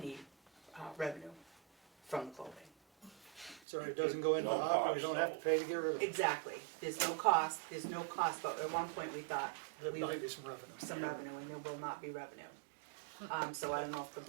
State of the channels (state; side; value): drops out; left; at 3.6 s